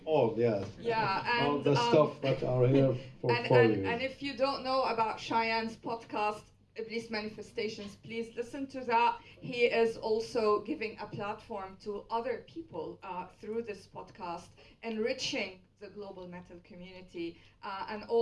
all, yeah. Yeah, and all the stuff that are here for you. And if you don't know about Shayan's podcast, Iblis Manifestations, please listen to that. He is also giving a platform to other people through this podcast, enriching the global metal community, and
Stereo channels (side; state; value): both; identical; correlation 1.00